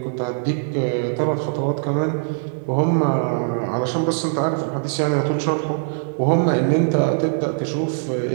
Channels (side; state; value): left; silent; digital silence